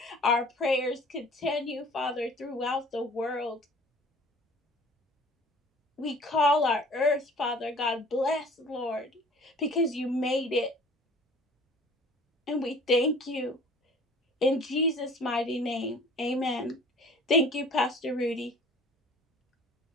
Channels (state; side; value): normal; both; correlation 0.48